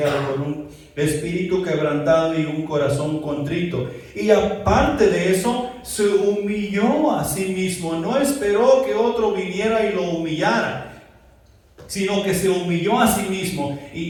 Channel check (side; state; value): both; identical; correlation 1.00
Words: con un espíritu quebrantado y un corazón contrito. Y aparte de eso, se humilló a sí mismo. No esperó que otro viniera y lo humillara, sino que se humilló a sí mismo.